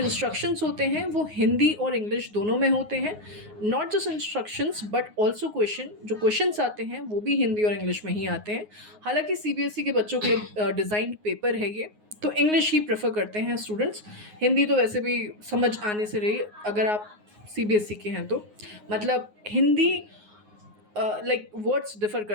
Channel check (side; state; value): left; late; 9.5 ms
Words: होते हैं वो हिंदी और इंग्लिश दोनों में होते हैं। Not just instructions but also जो क्वेश्चंस आते हैं वो भी हिंदी और इंग्लिश में ही आते हैं। हालांकि सीबीएसई के बच्चों के लिए डिज़ाइंड पेपर है ये, तो इंग्लिश ही प्रेफर करते हैं स्टूडेंट्स। हिंदी तो वैसे भी समझ आने से रही, अगर आप सीबीएसई के हैं तो मतलब हिंदी लाइक वर्ड्स डिफ़र